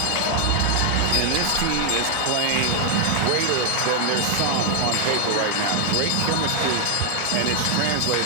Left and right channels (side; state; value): both; different; correlation 0.00